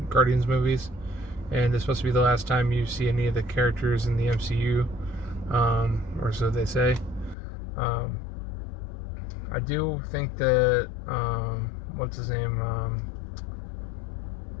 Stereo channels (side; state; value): right; drops out; at 7.4 s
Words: Guardians movies, and it's supposed to be the last time you see any of the characters in the MCU, or so they say. I do think that what's his name,